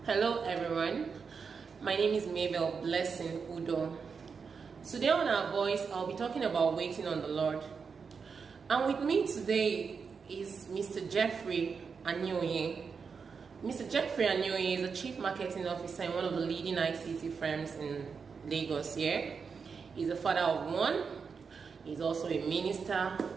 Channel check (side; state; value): left; quieter; 5.6 dB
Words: Hello everyone, my name is Mabel Blessing Udo. Today on Our Voice, I'll be talking about waiting on the Lord. And with me today is Mr. Jeffrey Anyoye. Mr. Jeffrey Anyoye is a Chief Marketing Officer in one of the leading ICT firms in Lagos here. He's a father of one. He's also a minister.